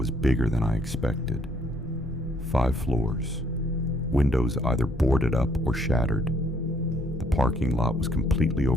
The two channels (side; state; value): both; normal; correlation 0.66